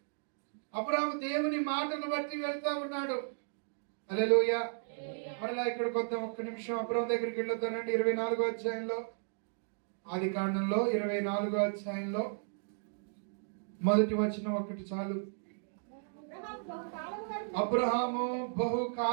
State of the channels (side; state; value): left; silent; digital silence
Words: అబ్రాహాము దేవుని మాటను బట్టి వెళ్తా ఉన్నాడు. హల్లెలూయా. మరలా ఇక్కడికి వద్దాం ఒక్క నిమిషం. అబ్రాహాము దగ్గరికి వెళ్ళొద్దానండి. 24వ అధ్యాయంలో, ఆది కాండంలో 24వ అధ్యాయంలో మొదటి వచనం ఒకటి చాలు. అబ్రహాము